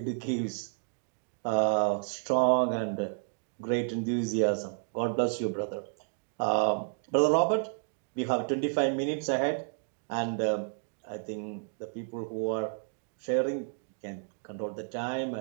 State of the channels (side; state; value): left; silent; digital silence